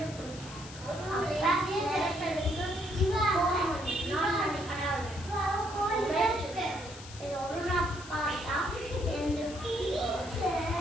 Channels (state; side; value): noise; left; hiss, 16 dB below the sound